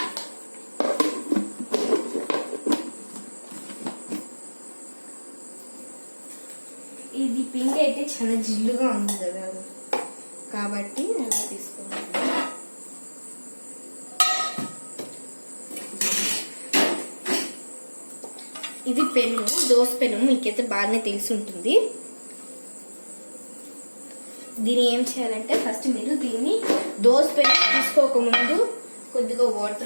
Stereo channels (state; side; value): inverted; both; correlation -1.00